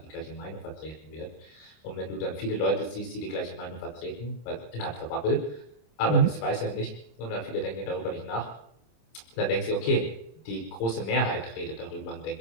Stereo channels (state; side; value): late; right; 26 ms